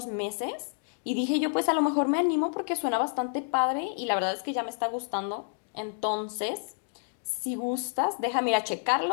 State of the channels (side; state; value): right; silent; digital silence